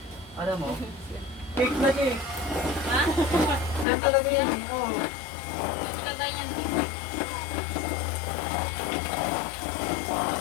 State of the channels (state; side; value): drops out; right; at 3.9 s